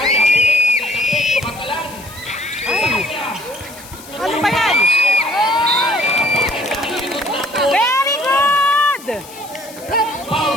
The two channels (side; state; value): left; noise; hiss, 18 dB below the sound